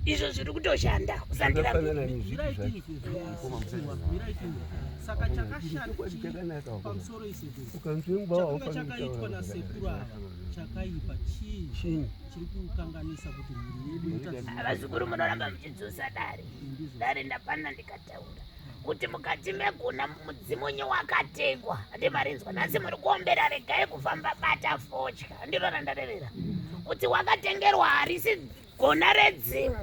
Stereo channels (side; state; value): both; identical; correlation 1.00